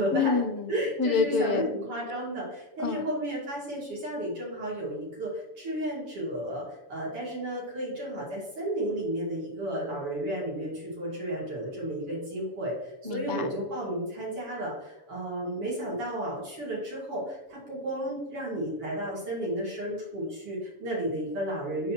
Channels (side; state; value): left; late; 7.0 ms